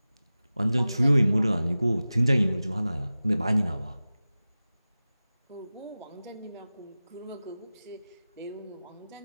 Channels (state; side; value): inverted; both; correlation -0.96